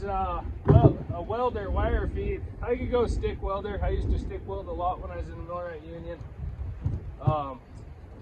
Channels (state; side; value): identical; both; correlation 1.00